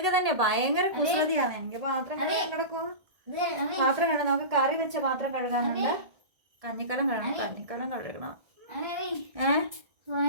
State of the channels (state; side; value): late; left; 1.7 ms